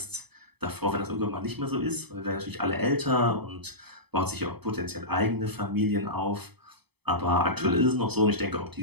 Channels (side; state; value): left; late; 0.98 ms